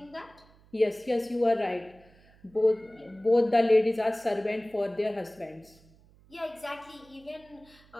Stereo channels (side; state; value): right; noise; hum, 28 dB below the sound